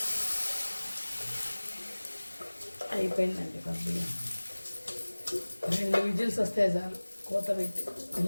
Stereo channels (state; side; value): inverted; both; correlation -1.00